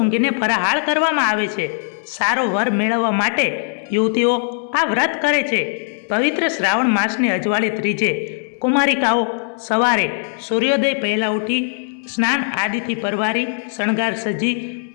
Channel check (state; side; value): silent; right; 66 dB below the other